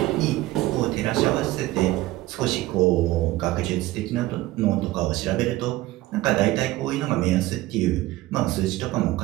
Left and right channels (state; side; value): quieter; left; 17.1 dB